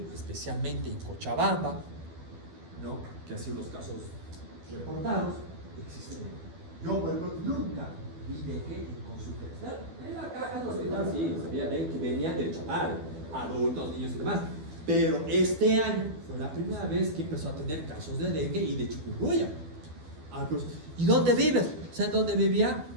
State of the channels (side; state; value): left; late; 12 ms